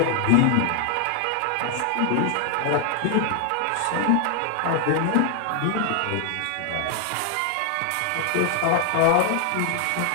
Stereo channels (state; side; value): different; both; correlation 0.00